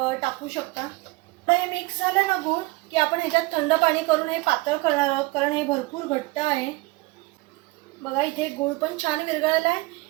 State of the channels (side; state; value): left; quieter; 22.7 dB